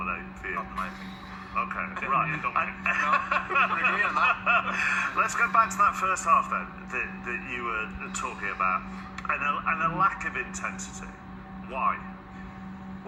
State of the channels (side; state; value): both; identical; correlation 1.00